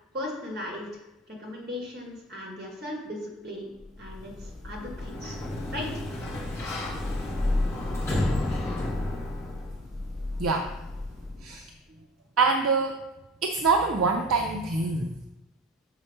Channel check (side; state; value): both; normal; correlation 0.40